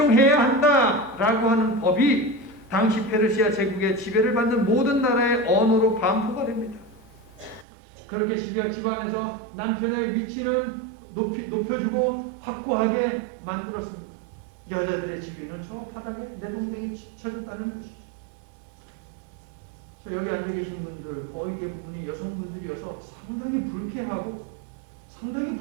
한다라고 하는 법이 당시 페르시아 제국의 지배를 받는 모든 나라의 언어로 반포가 됩니다. 그렇게 집안에서 남편의 위치는 높여주고 확고하게 만들었습니다. 여자들의 지위는 저 바닥에 내 동생이 쳐졌다는 것이죠. 저 여기 앉아 계신 분들 거의 대부분이 여성분들이어서 상당히 불쾌하고 상당히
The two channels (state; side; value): drops out; left; at 7.7 s